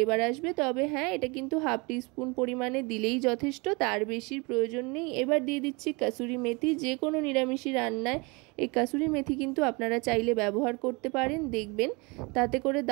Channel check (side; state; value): left; quieter; 28.0 dB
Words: আসবে। তবে হ্যাঁ, এটা কিন্তু হাফ টিস্পুন পরিমাণে দিলেই যথেষ্ট, তার বেশির প্রয়োজন নেই। এবার দিয়ে দিচ্ছি কাসুরি মেথি। যে কোনো নিরামিষি রান্নায় এই কাসুরি মেথি কিন্তু আপনারা চাইলে ব্যবহার করতে পারেন, দেখবেন তাতে করে